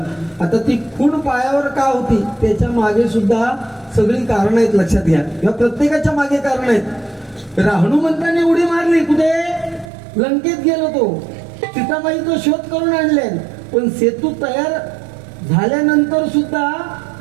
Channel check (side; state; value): left; drops out; at 9.9 s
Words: आता ती खूण पायावर का होती त्याच्या मागे सुद्धा सगळी कारण आहेत. लक्षात घ्या, या प्रत्येकाच्या मागे कारण आहेत. हनुमंताने उडी मारली कुठे? लंकेत गेलो तो, सीताबाईचा शोध करून आणले. पण सेतू तयार झाल्यानंतर सुद्धा